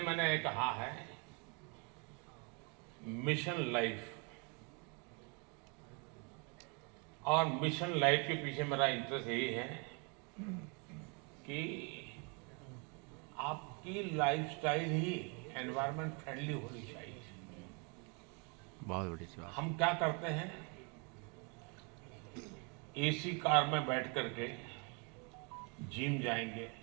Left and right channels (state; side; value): quieter; left; 33.9 dB